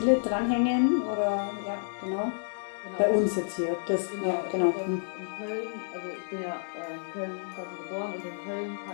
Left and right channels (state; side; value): silent; right; 58 dB below the other